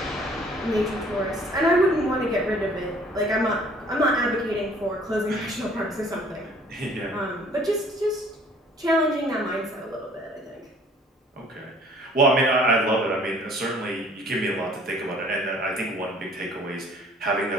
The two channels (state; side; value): normal; both; correlation 0.55